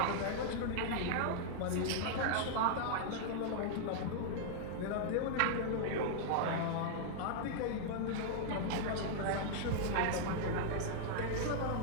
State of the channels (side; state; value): both; different; correlation -0.01